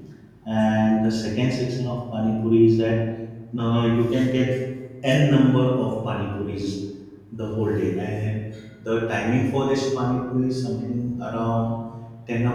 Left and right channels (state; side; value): identical; both; correlation 1.00